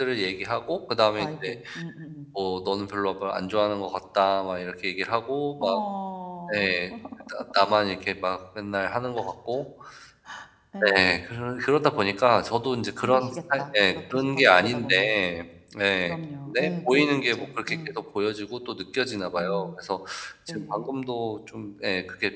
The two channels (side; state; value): both; identical; correlation 1.00